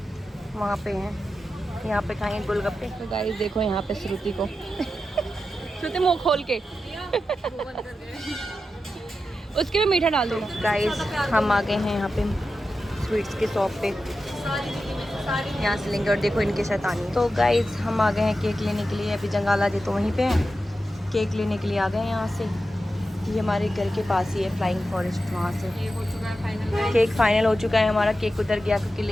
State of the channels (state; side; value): normal; both; correlation 0.91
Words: वहाँ पे हैं। यहाँ पे खाएंगे गोलगप्पे। तो गाइस देखो यहाँ पे श्रुति को श्रुति मुँह खोल के उसके में मीठा डाल दो। गाइस हम आ गए हैं यहाँ पे स्वीट्स के शॉप पे। यहाँ से लेंगे और देखो इनके शैतानी। तो गाइस हम आ गए हैं केक लेने के लिए। अभी जंगाला जी तो वहीं पे हैं। केक लेने के लिए आ गए हैं यहाँ से। ये हमारे घर के पास ही है फ्लाइंग फॉरेस्ट। वहाँ से हो चुका है फाइनल। केक फाइनल हो चुका है हमारा। केक उधर गया क्योंकि